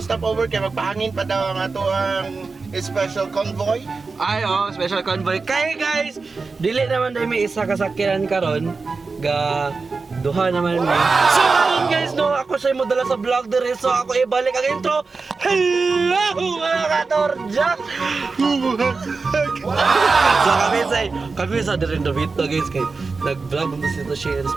stop over kay magpahangin pa daw ang ato ang special convoy. Ay special convoy. Kay guys, dili naman dai may isa kasakyanan karon ga duha naman mi. So karon guys, no, ako say modala sa vlog diri, so ako ibalik ang intro. Hello mga katorjak. So kami sa diri Davito guys, kay nag-vlog mo sa Shane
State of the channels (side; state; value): left; quieter; 4.3 dB